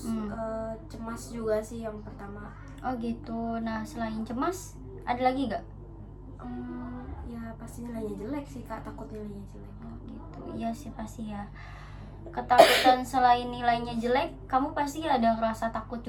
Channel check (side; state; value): both; identical; correlation 1.00